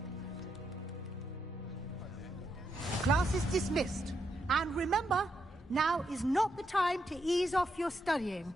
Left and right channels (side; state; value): both; normal; correlation 0.81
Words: Class is dismissed. And remember, now is not the time to ease off your studying.